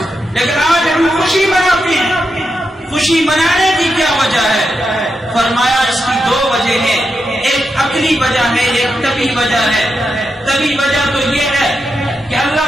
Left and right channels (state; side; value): normal; both; correlation 0.86